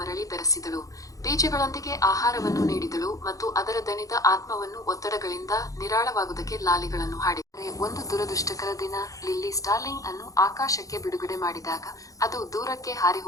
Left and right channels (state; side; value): late; right; 0.16 ms